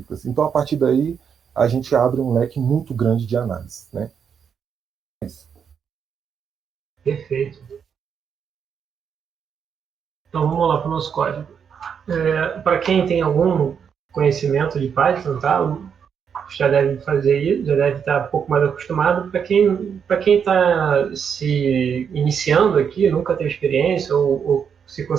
Então, a partir daí, a gente abre um leque muito grande de análise. Né? É isso. Perfeito. Então, vamos lá para o nosso código. Para quem tem algum conhecimento de Python, tá? Já deve fazer isso, já deve estar um pouco mais acostumado. Para quem está se iniciando aqui, nunca teve experiência ou se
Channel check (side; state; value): left; quieter; 7.2 dB